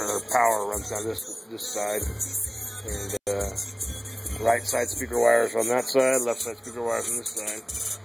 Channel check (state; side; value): identical; both; correlation 1.00